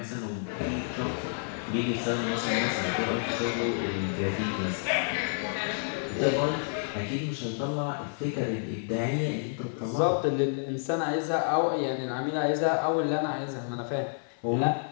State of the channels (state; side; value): silent; right; 58 dB below the other